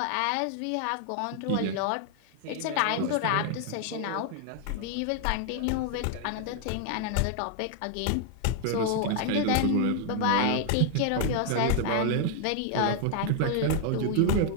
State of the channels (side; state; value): both; different; correlation 0.00